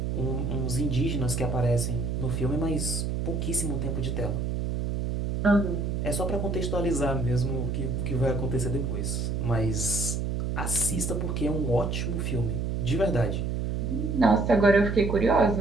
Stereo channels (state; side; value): noise; right; hum, 1 dB below the sound